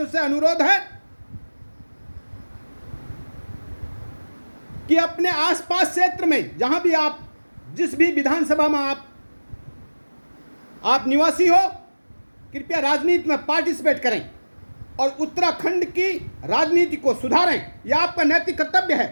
से अनुरोध है कि अपने आसपास क्षेत्र में, जहां भी आप, जिस भी विधानसभा में आप निवासी हो, कृपया राजनीति में पार्टिसिपेट करें और उत्तराखंड की राजनीति को सुधारें। यह आपका नैतिक कर्तव्य है।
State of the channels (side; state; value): both; inverted; correlation -1.00